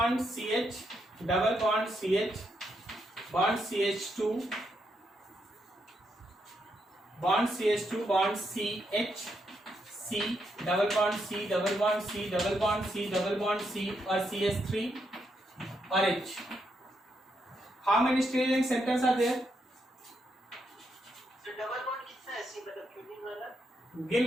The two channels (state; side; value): normal; both; correlation 0.80